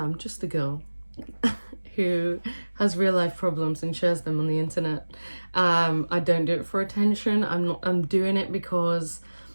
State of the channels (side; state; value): both; inverted; correlation -1.00